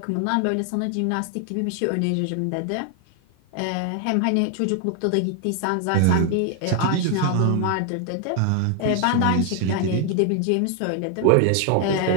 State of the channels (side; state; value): both; different; correlation 0.00